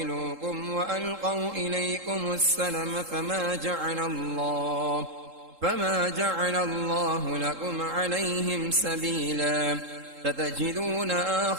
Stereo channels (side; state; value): left; late; 3.7 ms